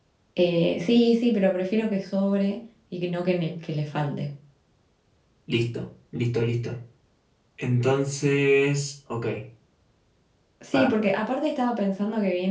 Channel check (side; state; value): both; identical; correlation 1.00